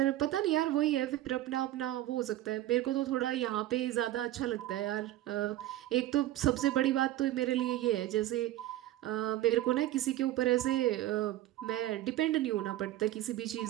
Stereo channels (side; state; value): left; quieter; 14.6 dB